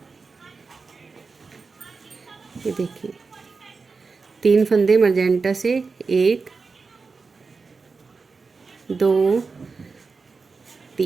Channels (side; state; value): left; quieter; 4.5 dB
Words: देखिए 3 फंदे मजेंटा से, 1 2